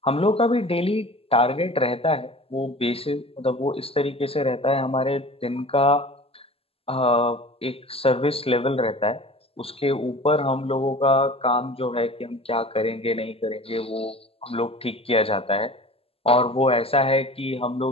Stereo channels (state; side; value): late; right; 0.28 ms